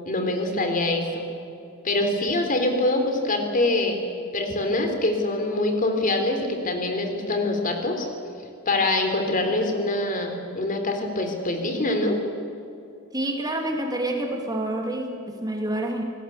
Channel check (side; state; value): both; normal; correlation 0.18